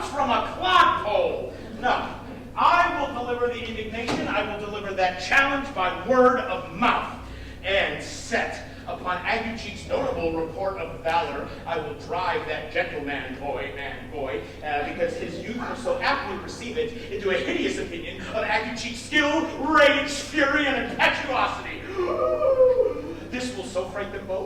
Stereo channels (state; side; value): identical; both; correlation 1.00